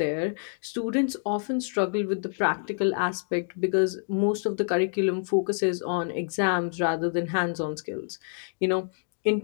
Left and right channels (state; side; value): silent; right; digital silence